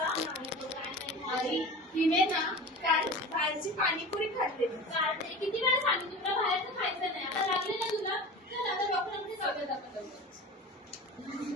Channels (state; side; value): normal; both; correlation 0.33